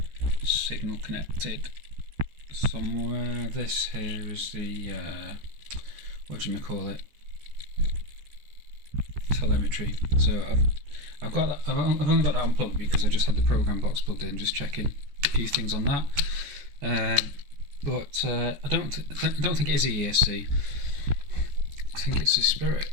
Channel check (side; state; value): left; late; 14 ms